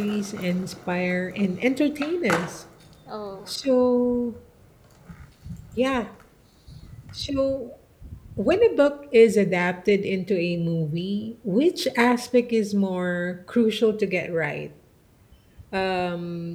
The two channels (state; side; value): identical; both; correlation 1.00